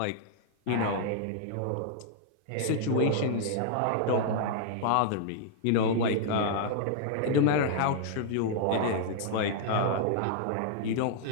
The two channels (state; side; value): different; both; correlation -0.01